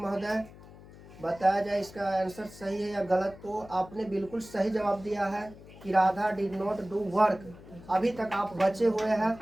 बताया जाए इसका आंसर सही है या गलत। तो आपने बिल्कुल सही जवाब दिया है कि Radha did not do work. अभी तक आप बचे हुए हैं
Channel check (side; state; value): left; noise; hum, 19 dB below the sound